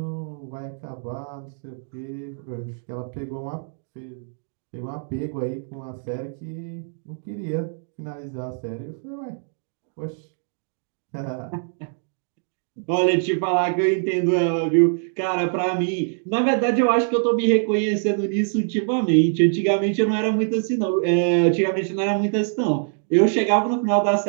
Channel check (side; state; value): left; silent; digital silence